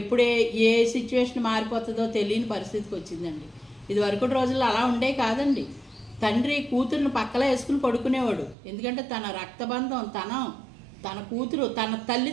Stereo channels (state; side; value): drops out; left; at 8.6 s